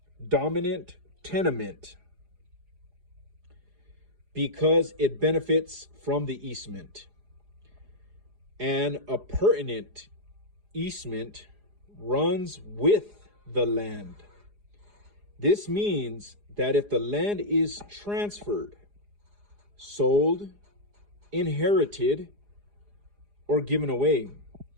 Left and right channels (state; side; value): late; left; 4.9 ms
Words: dominant tenement because it benefits from the easement. And a appurtenant easement runs with the land. This means that if the land is transferred, sold, inherited, or given away,